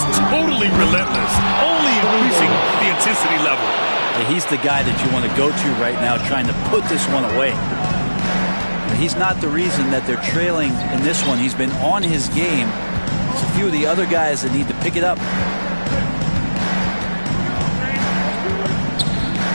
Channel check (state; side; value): inverted; both; correlation -1.00